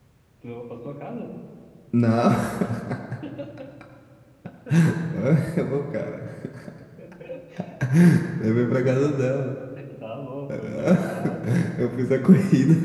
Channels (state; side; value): identical; both; correlation 1.00